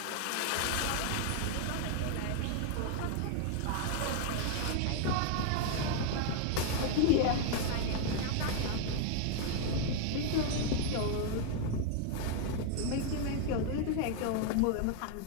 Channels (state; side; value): different; both; correlation 0.01